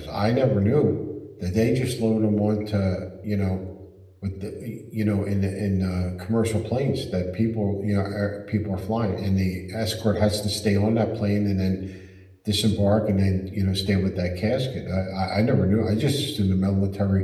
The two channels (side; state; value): both; identical; correlation 1.00